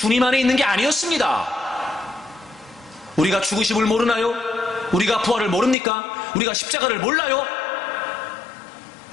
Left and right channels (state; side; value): drops out; right; at 5.8 s